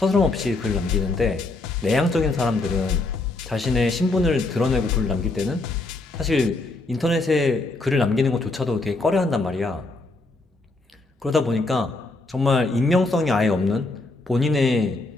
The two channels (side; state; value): right; quieter; 3.2 dB